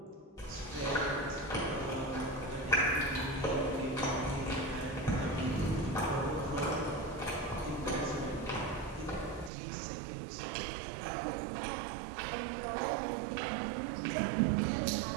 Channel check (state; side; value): drops out; left; at 9.5 s